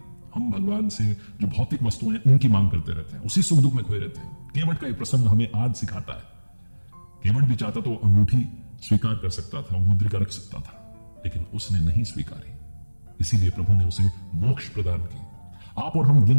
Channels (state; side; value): inverted; both; correlation -1.00